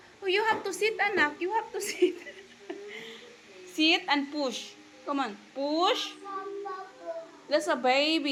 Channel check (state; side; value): identical; both; correlation 1.00